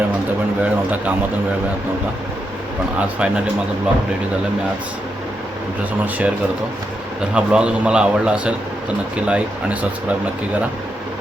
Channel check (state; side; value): normal; both; correlation 0.83